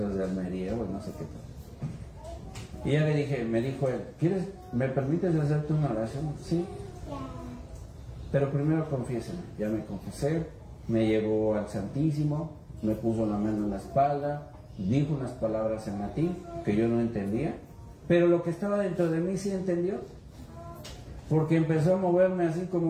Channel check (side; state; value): both; identical; correlation 1.00